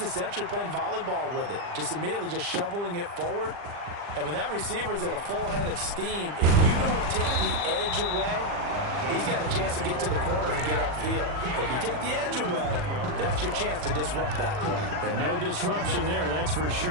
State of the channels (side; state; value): left; late; 40 ms